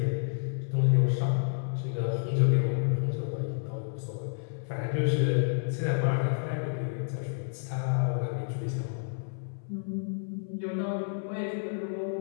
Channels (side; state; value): right; silent; 58 dB below the other